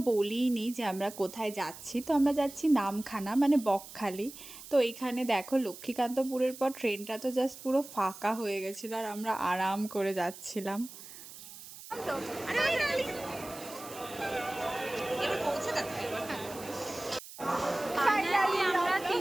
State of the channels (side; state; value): right; noise; hiss, 15 dB below the sound